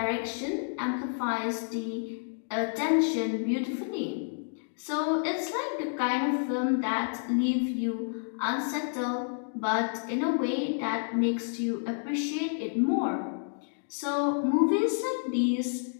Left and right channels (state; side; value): silent; right; digital silence